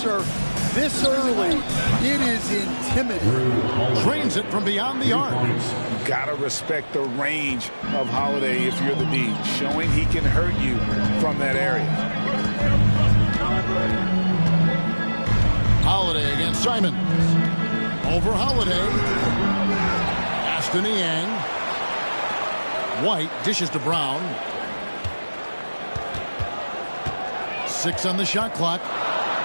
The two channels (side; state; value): both; inverted; correlation -1.00